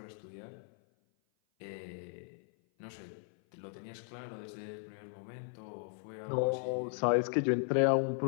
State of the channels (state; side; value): silent; right; 53 dB below the other